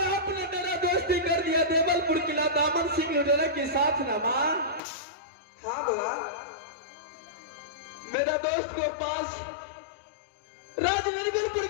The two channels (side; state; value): right; drops out; at 4.8 s